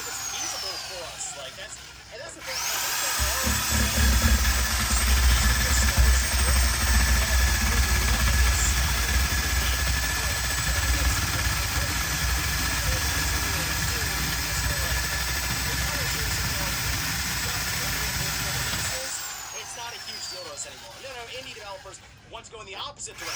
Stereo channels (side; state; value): both; identical; correlation 1.00